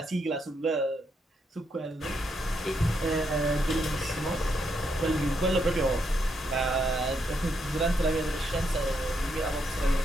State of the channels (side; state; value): both; normal; correlation 0.78